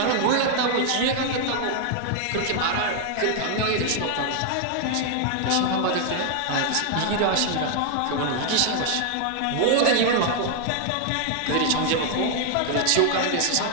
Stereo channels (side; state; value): both; different; correlation 0.00